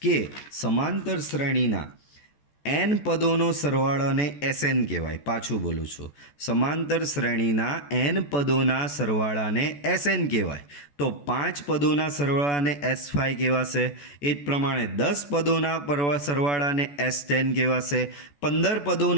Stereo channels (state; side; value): late; right; 14 ms